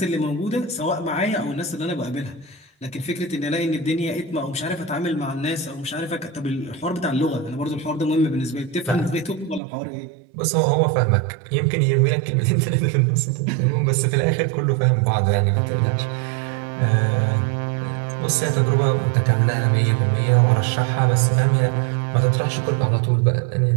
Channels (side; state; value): left; drops out; at 9.6 s